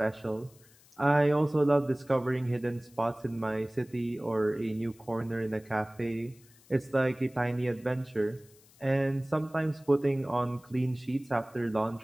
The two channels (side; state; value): left; noise; hiss, 27 dB below the sound